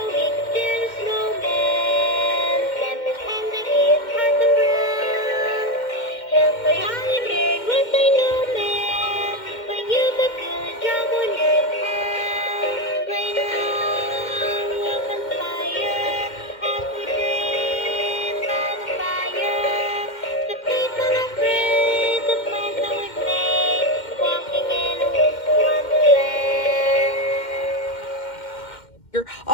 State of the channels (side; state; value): right; late; 2.1 ms